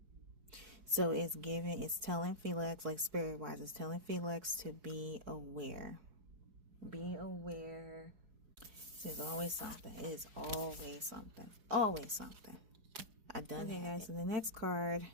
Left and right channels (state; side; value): late; left; 4.8 ms